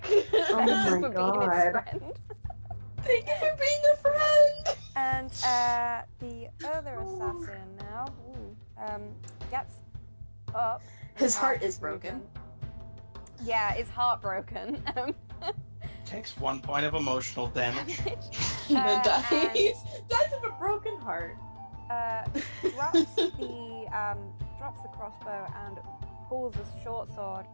Oh Thank you my for being God. its friend. Thank you for being a friend! And the other assassin now gets up. His heart is broken. Yeah, his heart broken. Takes 1 point of emotional damage. The dice. and- Dice of a broken heart. Drops the crossbow and pulls a short sword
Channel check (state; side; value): inverted; both; correlation -1.00